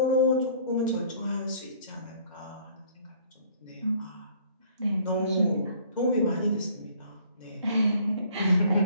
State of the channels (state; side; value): inverted; both; correlation -0.57